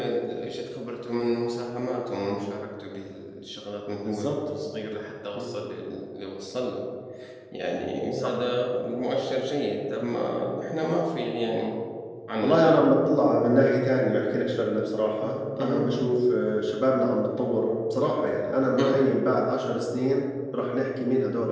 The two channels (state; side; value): identical; both; correlation 1.00